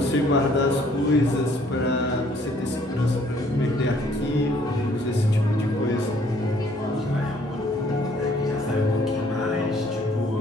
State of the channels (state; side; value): normal; both; correlation 0.62